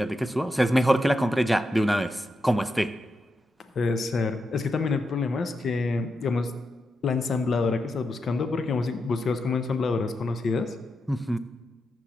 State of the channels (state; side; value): normal; both; correlation 0.87